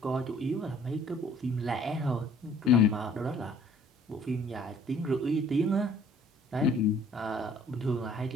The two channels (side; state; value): both; normal; correlation 0.56